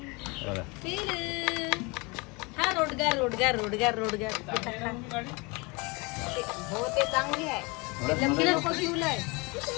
हा रोडगार रोडगार रोडगार रोडगार हो ते चांगली आहे.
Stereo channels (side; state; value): right; quieter; 27.7 dB